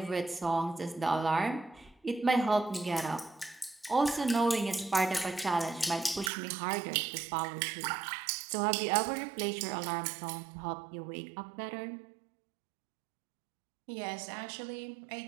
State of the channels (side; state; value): left; drops out; at 6.3 s